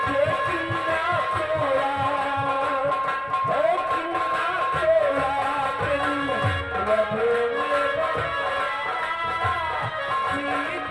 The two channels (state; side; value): noise; left; rumble, 26 dB below the sound